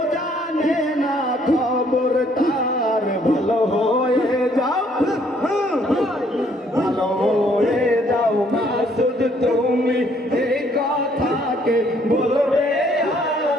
জানে না খবর তার। ভালো হয়ে যাও, ভালো হয়ে যাও মাসুদ তুমি, এই কথাকে বলবে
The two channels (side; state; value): both; normal; correlation 0.65